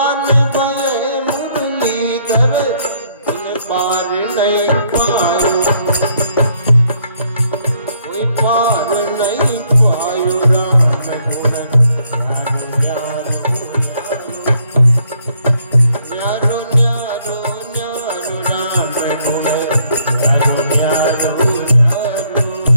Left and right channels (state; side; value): inverted; both; correlation -0.69